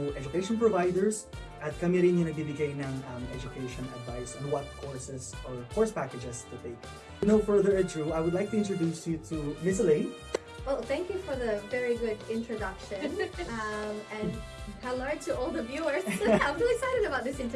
education providers, at kami rin yung nagbibigay ng education advice on what courses or course packages to take. No further ado, I would like to introduce you to Miss Elaine. Well, thank you for the very good introduction. And hello to all the viewers. I'm really excited about this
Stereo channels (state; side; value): identical; both; correlation 1.00